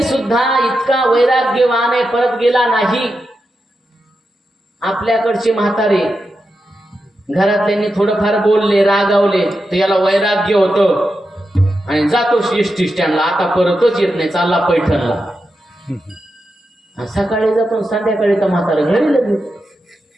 सुद्धा इतका वैराग्यवान आहे, परत गेला नाही. आपल्याकडचे म्हातारे घरातल्यांनी थोडंफार बोलले, रागावले, तर याला वैराग्य होतं आणि जातो एसटी स्टँडला, आता परतच येत नाही, चालला पैठणला. सकाळी जातो संध्याकाळी तर म्हातारा घरी लगेच.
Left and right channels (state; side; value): normal; both; correlation 0.88